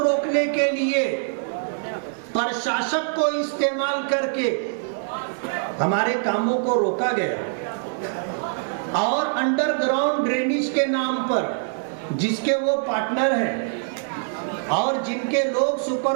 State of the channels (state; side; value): silent; left; digital silence